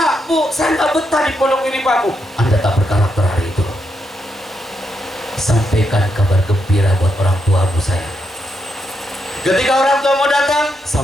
Bu, saya nggak betah di pondok ini, Pak, Bu. Anda tak berkarakter hari itu. Sampaikan kabar gembira buat orang tua Bu saya. Ketika orang tua mau datang,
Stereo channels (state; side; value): normal; both; correlation 0.81